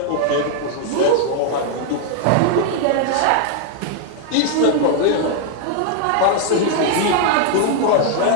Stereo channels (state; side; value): different; both; correlation 0.00